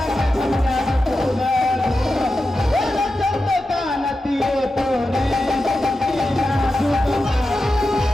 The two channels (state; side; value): normal; both; correlation 0.91